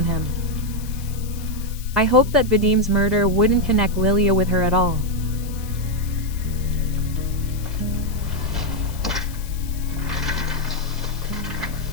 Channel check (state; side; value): noise; left; hiss, 17 dB below the sound